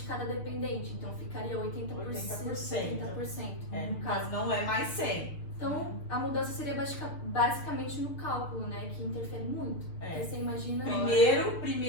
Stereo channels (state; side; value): late; right; 6.7 ms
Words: cada dependente. Então, ficaria 80%. 80%. No caso. Mas não é mais 100%. Então, a mudança seria basicamente no cálculo, né? Que interfere muito. Porque você imagina...